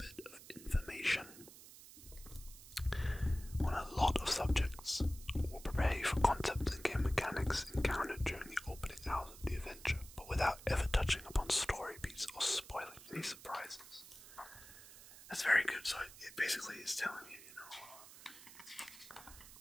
of information on a lot of subjects will prepare you for concepts and game mechanics encountered during the opening hours of the adventure, but without ever touching upon story beats or spoiling any surprises. That's very good. So it basically is telling you,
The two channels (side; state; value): right; noise; hiss, 17 dB below the sound